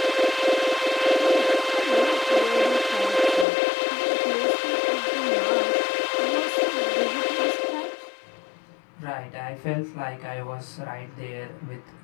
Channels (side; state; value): right; drops out; at 3.5 s